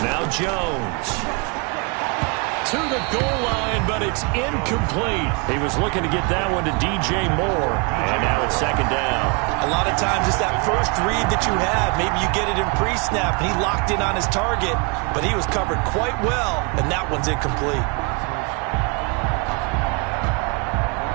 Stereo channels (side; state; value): left; quieter; 32.3 dB